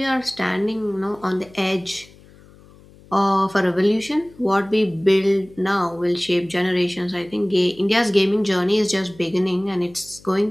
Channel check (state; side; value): noise; left; hum, 25 dB below the sound